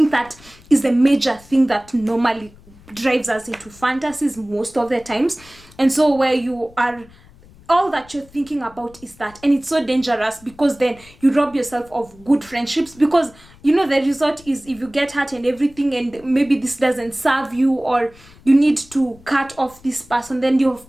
that is a major thing that normally drives us into fantasies most of the times. And so where you are, all that you're thinking about is that, and it's so dangerous, because then you rob yourself of good friendships, because the result is, if you get hurt and everything, and maybe this doesn't serve you, or you need to cut off this person, then you've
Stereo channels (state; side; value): noise; left; rumble, 24 dB below the sound